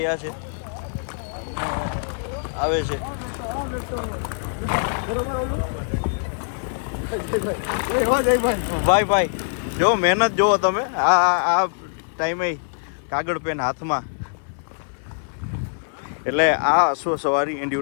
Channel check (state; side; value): silent; right; 58 dB below the other